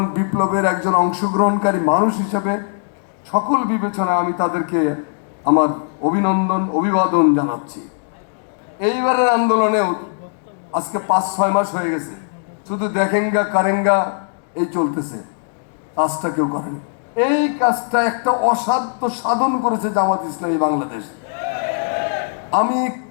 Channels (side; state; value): right; silent; digital silence